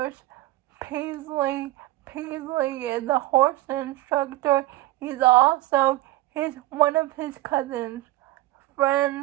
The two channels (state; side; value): quieter; left; 17.1 dB